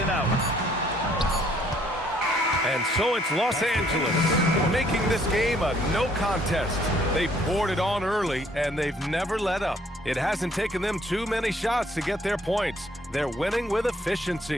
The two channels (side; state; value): both; normal; correlation 0.64